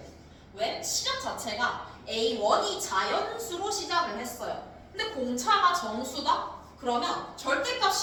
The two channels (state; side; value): identical; both; correlation 1.00